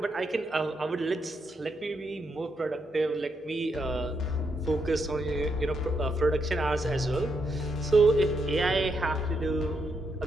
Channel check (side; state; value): both; normal; correlation 0.80